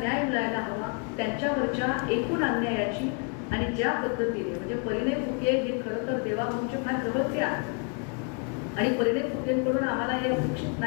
मिळायला हवा, त्यांच्यावरच्या एकूण अन्यायाची. आणि ज्या पद्धतीने म्हणजे परिणय फुके हे खरं तर देवाभाऊंचे फार जवळचे आहेत आणि परिणय फुकेंकडून आम्हाला हे अपेक्षित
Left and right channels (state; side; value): quieter; right; 37.7 dB